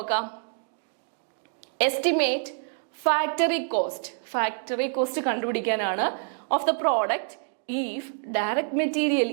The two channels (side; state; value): left; silent; 58 dB below the other